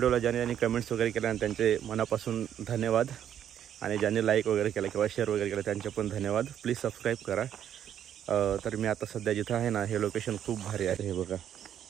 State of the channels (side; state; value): left; quieter; 9.9 dB